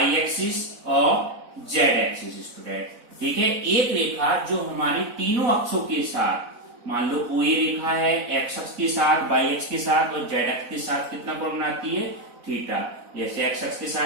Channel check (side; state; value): left; late; 4.0 ms